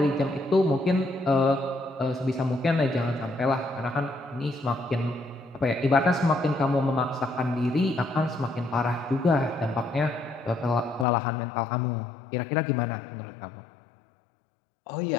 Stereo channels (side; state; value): right; drops out; at 11.1 s